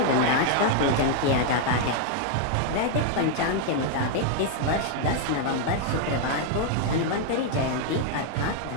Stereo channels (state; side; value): different; both; correlation 0.00